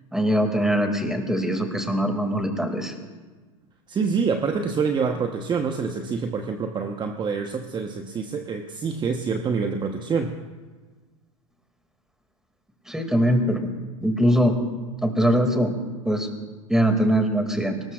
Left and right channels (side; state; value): both; normal; correlation 0.66